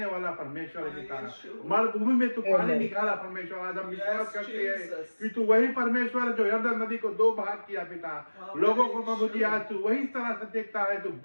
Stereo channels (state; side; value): inverted; both; correlation -1.00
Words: वाला परमेश्वर है पिता। मरुभूमि में तू पानी निकाला परमेश्वर। आज हम विश्वास करते हैं कि तू वही परमेश्वर है जो यरदन नदी को 2 भाग किया पिता। लोगों को प्रभु जी आज तू वही तरह से देखता है, तू